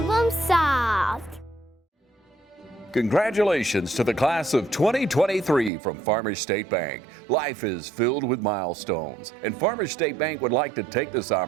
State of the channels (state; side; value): drops out; left; at 5.7 s